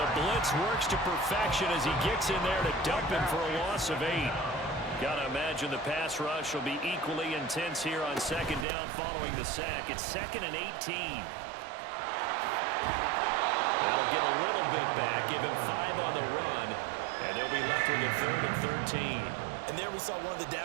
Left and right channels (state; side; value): drops out; left; at 8.7 s